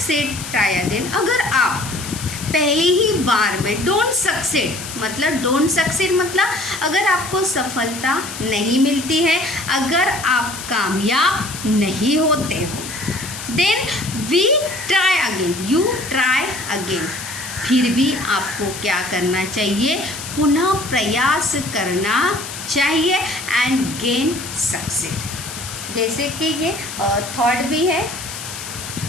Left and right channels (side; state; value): left; noise; hiss, 10 dB below the sound